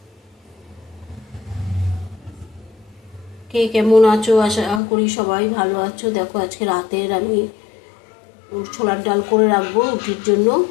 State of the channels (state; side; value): drops out; right; at 4.8 s